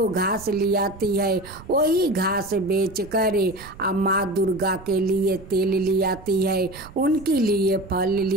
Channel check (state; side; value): noise; right; rumble, 19 dB below the sound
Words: घास ले आती है वही घास बेच कर और माँ दुर्गा के लिए तेल ले आती है, उनके लिए फल